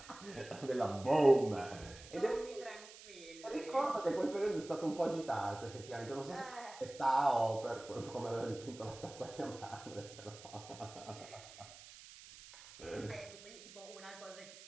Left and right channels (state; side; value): noise; right; hiss, 17 dB below the sound